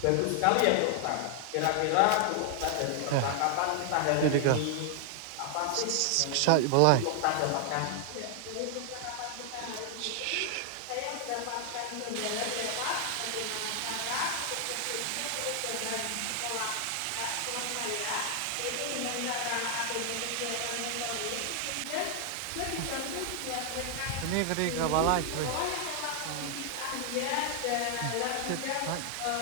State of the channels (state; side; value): different; both; correlation 0.00